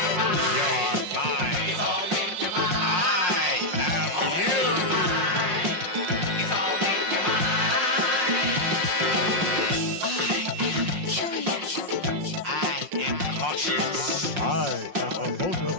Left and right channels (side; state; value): left; late; 5.6 ms